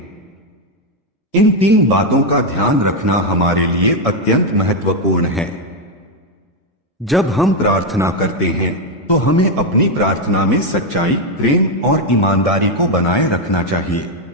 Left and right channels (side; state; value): both; normal; correlation 0.04